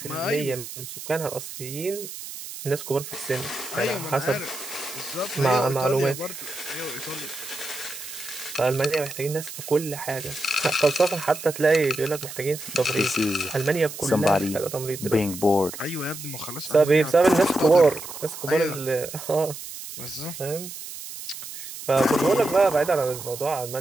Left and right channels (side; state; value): right; noise; hiss, 11 dB below the sound